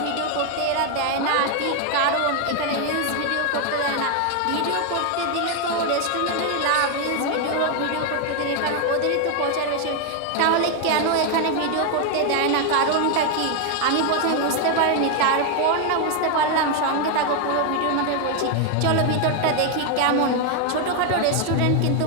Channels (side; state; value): both; different; correlation 0.01